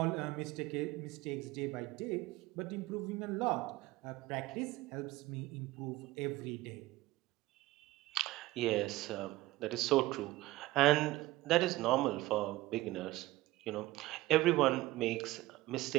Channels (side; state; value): left; quieter; 18.1 dB